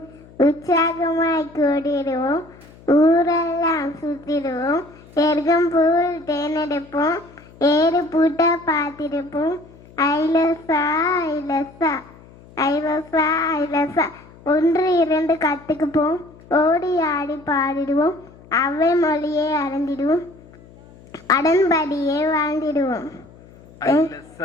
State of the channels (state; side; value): noise; left; hum, 23 dB below the sound